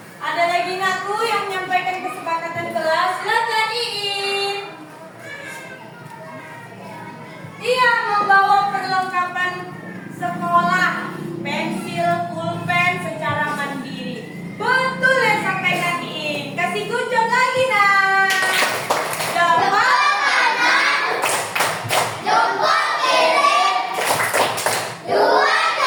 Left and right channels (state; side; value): identical; both; correlation 1.00